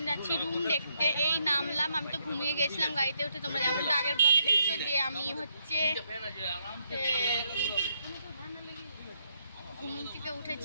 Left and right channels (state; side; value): inverted; both; correlation -0.76